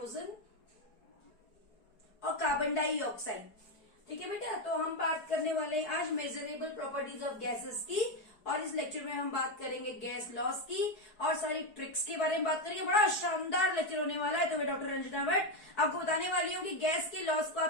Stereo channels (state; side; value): late; right; 4.7 ms